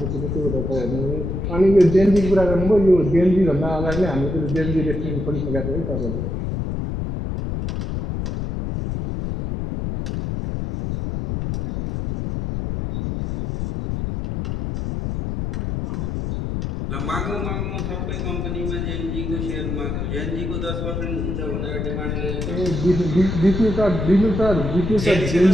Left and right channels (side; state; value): left; noise; rumble, 3 dB below the sound